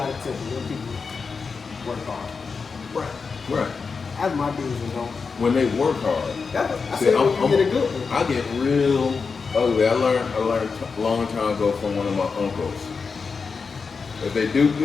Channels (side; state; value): right; quieter; 5.1 dB